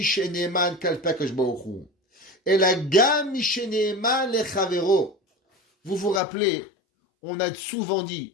ne'eman kalpe Akadosh Baruch Hu. Ela gam mishe ne'eman lechavero. Vous vous rappelez, on a souvent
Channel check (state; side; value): drops out; right; at 6.2 s